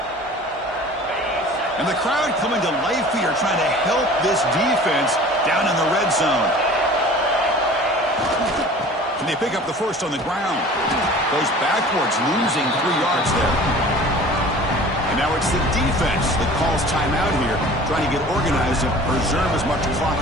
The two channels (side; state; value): both; normal; correlation 0.44